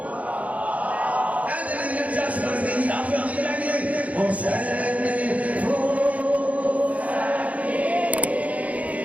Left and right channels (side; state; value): left; late; 0.069 ms